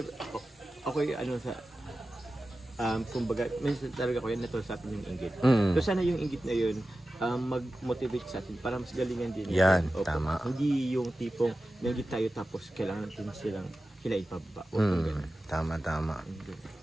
kumbaga, minsan talaga ko yan, natuloy sa atin yung inggit. So sana yung inggit na yun, mag-motivate sa atin para mas galingan din. Yan, tama. Hindi yung tipong nanggit tayo tapos kailangan natin sila ipababa. Tama.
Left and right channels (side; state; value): both; normal; correlation 0.94